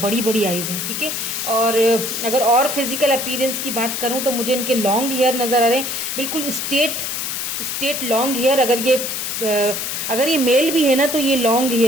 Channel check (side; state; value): left; noise; hiss, 3 dB below the sound